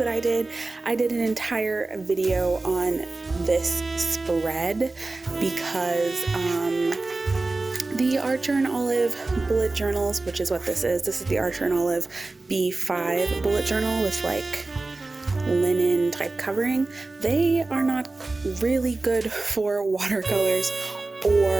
I did. I did an entire video on this spread because the Archer and Olive bullet journals, which is what this is the Archer and Olive B5 bullet journal with like linen type covering. They are not really good for watercolors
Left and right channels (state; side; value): quieter; left; 3.3 dB